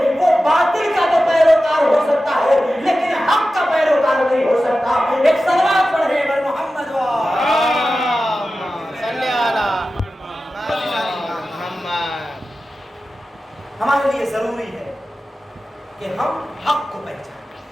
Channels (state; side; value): normal; both; correlation 0.94